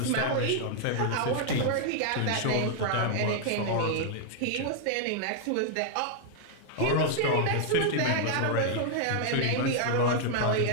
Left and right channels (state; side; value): different; both; correlation -0.01